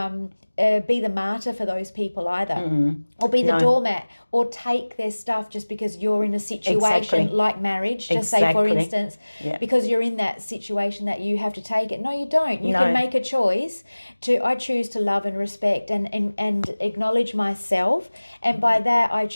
be the martyr for those people either, or be the doormat, or take their stuff just because you're in a situation like marriage, just say for instance, because you're in that situation that you have to take it. No, you don't. You can make a choice I choose to love and respect and acknowledge myself, and by that I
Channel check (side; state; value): both; inverted; correlation -1.00